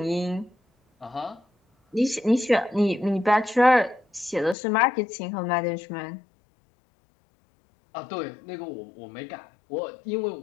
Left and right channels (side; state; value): right; drops out; at 4.5 s